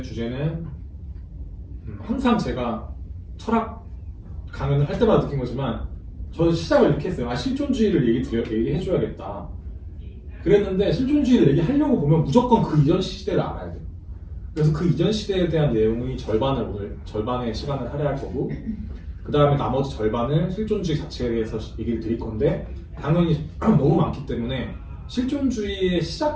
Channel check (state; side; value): identical; both; correlation 1.00